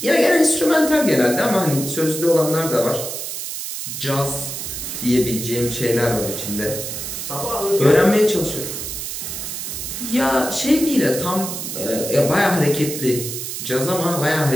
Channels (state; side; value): noise; right; hiss, 6 dB below the sound